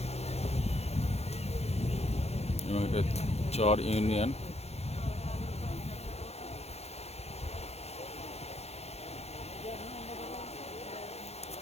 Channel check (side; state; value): right; late; 0.31 ms